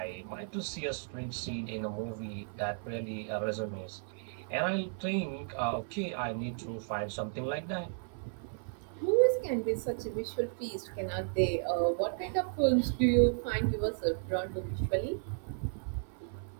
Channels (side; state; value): left; silent; 55 dB below the other